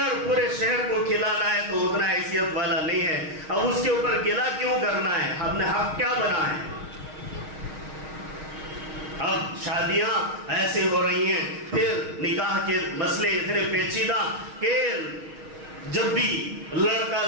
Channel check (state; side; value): late; left; 6.4 ms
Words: پورے شہر کو کھلانا ہے تو اتنا حیثیت والا نہیں ہے، اب اس کے اوپر گلا کیوں کرنا ہے؟ ہم نے حق کیا بنا ہے؟ اب شادیاں ایسے ہو رہی ہیں، پھر نکاح کے مسئلے اتنے پیچیدہ کہ جب بھی لڑکا